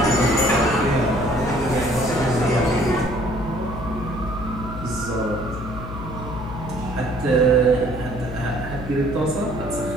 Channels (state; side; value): noise; left; hum, 9 dB below the sound